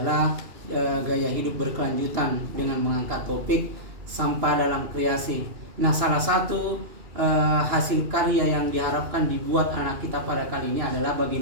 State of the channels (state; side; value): late; left; 2.7 ms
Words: gaya hidup berkelanjutan dengan mengangkat topik sampah dalam kreasi. Nah, salah satu hasil karya yang diharapkan dibuat anak kita pada kali ini adalah